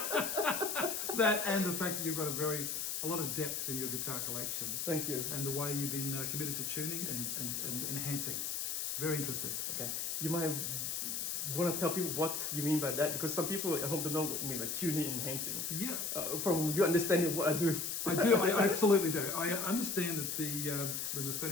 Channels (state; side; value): noise; left; hiss, 2 dB below the sound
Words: that and the fact that you've got a lot of depth in your guitar collection. Thank you. And the way you've been committed to tuning and enhancing. Very interested. Okay. You might want to tell people what you mean by that, because some people at home don't know what you mean by tuning and enhancing. Yeah. From your understanding of what I do. I absolutely do. I understand that when the